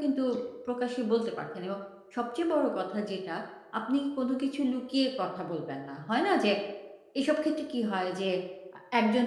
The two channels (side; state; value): both; identical; correlation 1.00